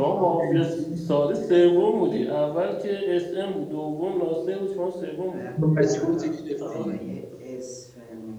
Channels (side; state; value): both; identical; correlation 1.00